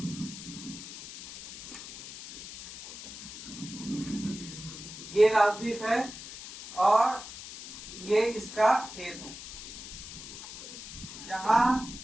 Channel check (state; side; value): noise; left; hiss, 12 dB below the sound